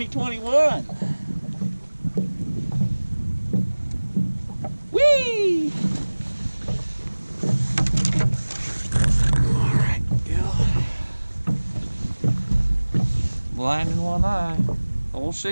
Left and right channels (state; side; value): inverted; both; correlation -1.00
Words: Whee! Alright, Gil. Blind in one eye. Old